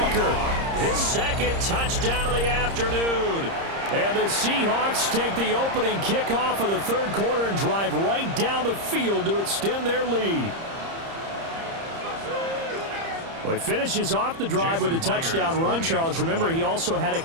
His 2nd touchdown of the afternoon. And the Seahawks take the opening kickoff of the 3rd quarter and drive right down the field to extend their lead. Well, he finishes off the drive with a touchdown run, Charles. Remember, he also had a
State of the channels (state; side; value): late; left; 30 ms